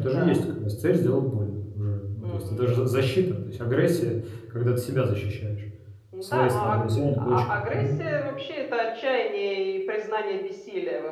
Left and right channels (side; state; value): both; identical; correlation 1.00